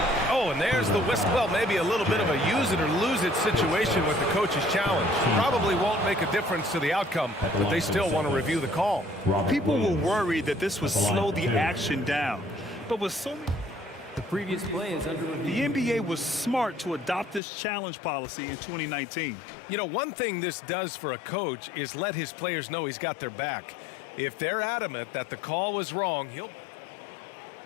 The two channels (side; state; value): right; drops out; at 17.4 s